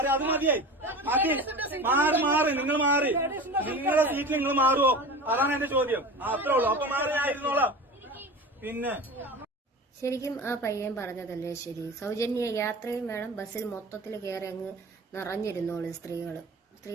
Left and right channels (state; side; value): normal; both; correlation 0.33